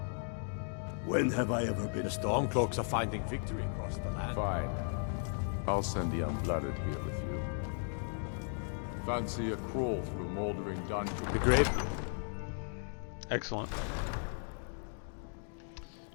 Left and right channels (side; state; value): right; silent; 54 dB below the other